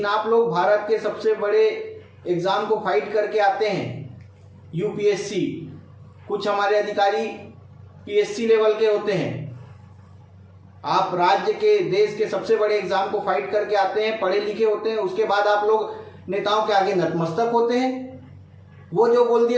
आप लोग भारत के सबसे बड़े एग्जाम को फाइट करके आते हैं, UPSC। कुछ हमारे अधिकारी PSC लेवल के होते हैं। आप राज्य के, देश के सबसे बड़े एग्जाम को फाइट करके आते हैं, पढ़े लिखे होते हैं, उसके बाद आप लोग नेताओं के आगे नतमस्तक होते हैं। वो जो बोल दिए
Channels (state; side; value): identical; both; correlation 1.00